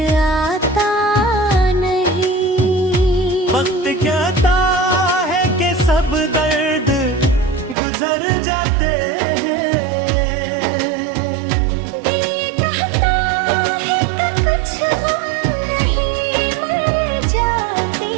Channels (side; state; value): left; drops out; at 7.8 s